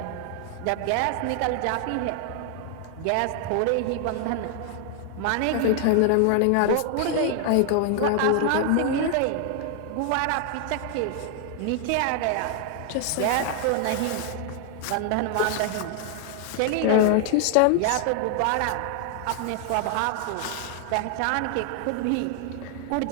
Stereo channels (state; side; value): different; both; correlation 0.00